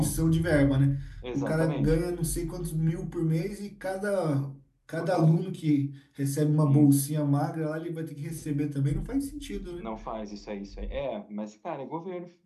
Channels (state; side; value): identical; both; correlation 1.00